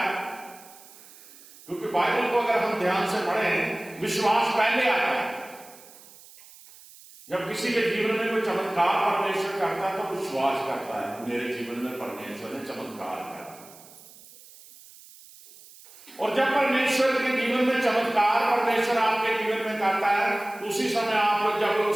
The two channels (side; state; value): right; noise; hiss, 21 dB below the sound